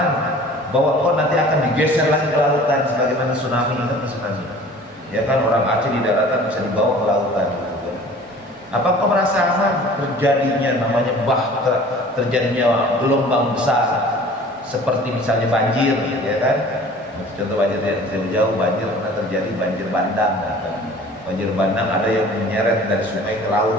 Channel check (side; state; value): both; normal; correlation 0.46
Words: bahwa kau nanti akan digeser lagi ke lautan sebagaimana tsunami? Ingat tsunami? Ya kan, orang Aceh di daratan bisa dibawa ke lautan. Apa kau merasa aman terjadinya namanya terjadinya gelombang besar seperti misalnya banjir, ya kan? Contoh banjir yang jauh, banjir pernah terjadi banjir bandang. Kan? Banjir bandang ada yang menyeret dari sungai ke